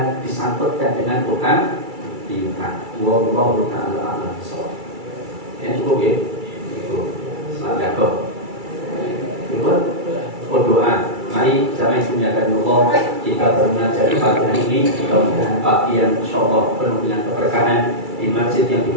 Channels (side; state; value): left; late; 2.3 ms